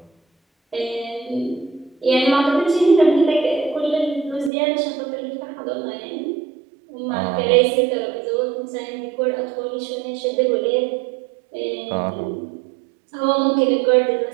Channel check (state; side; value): drops out; left; at 4.5 s